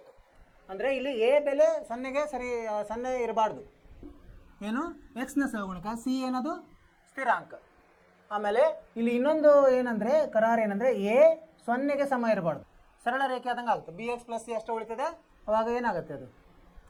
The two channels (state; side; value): identical; both; correlation 1.00